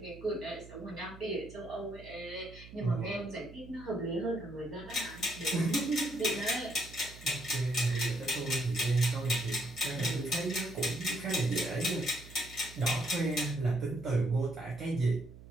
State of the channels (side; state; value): right; noise; hum, 17 dB below the sound